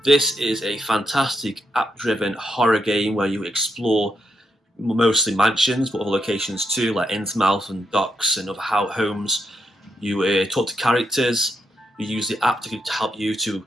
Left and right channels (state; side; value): normal; both; correlation 0.81